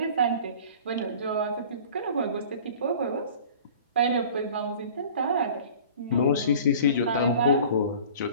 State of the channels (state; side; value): inverted; both; correlation -0.44